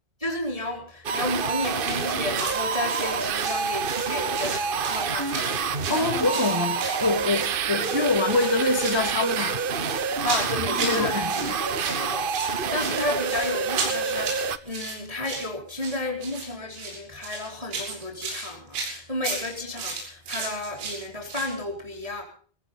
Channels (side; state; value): left; late; 2.5 ms